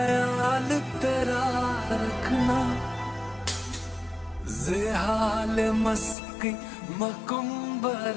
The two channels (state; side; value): drops out; right; at 6.2 s